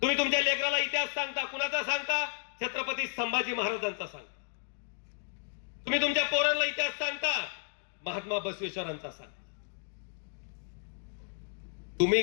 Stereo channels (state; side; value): silent; right; 56 dB below the other